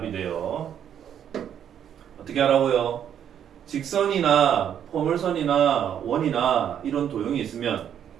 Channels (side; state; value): left; quieter; 9.3 dB